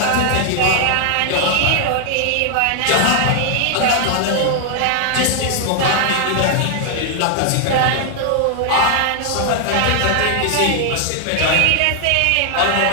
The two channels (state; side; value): different; both; correlation 0.00